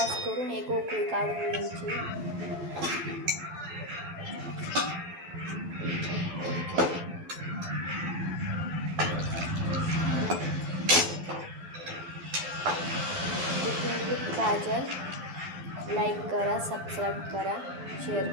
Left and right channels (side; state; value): left; late; 12 ms